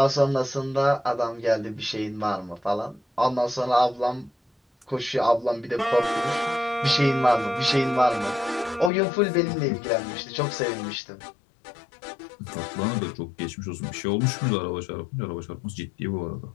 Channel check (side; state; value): right; drops out; at 8.9 s